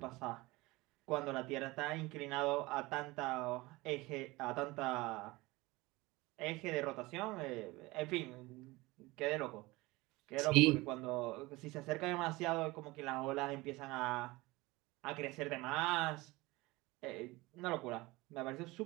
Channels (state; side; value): quieter; left; 21.5 dB